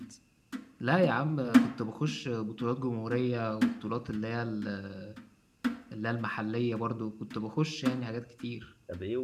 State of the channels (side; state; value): both; identical; correlation 1.00